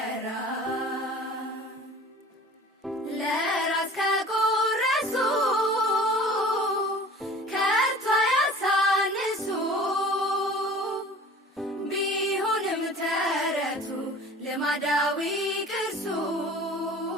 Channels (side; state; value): both; normal; correlation 0.43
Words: ለራስ ከቆረሱ ከቶ ያሳንሱ ቢሆንም ተረቱ ልማዳዊ ቅርሱ